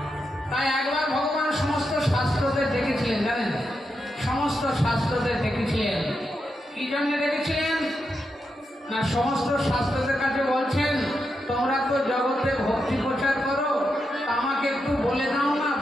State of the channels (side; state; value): both; normal; correlation 0.85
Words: তাই একবার ভগবান সমস্ত শাস্ত্রদের দেখেছিলেন, জানেন সমস্ত শাস্ত্রদের দেখেছিলেন। কি জন্য দেখেছিলেন না, সমস্ত শাস্ত্রদের কাছে বলছেন তোমরা তো জগতে ভক্তি প্রচার করো, আমাকে একটু বলে দাও না